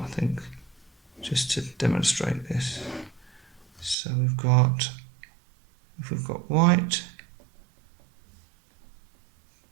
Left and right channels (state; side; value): drops out; left; at 4.0 s